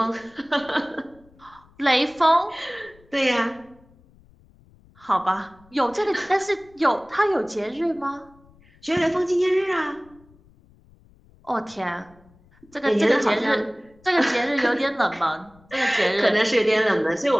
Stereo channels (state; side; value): noise; left; rumble, 29 dB below the sound